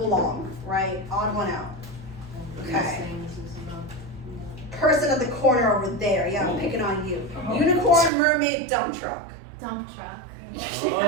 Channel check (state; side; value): drops out; left; at 8.1 s